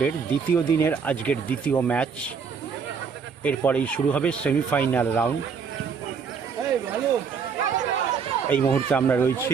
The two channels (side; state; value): left; quieter; 6.1 dB